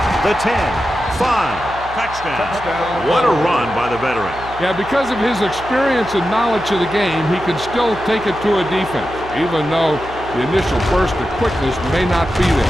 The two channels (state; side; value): noise; right; hum, 15 dB below the sound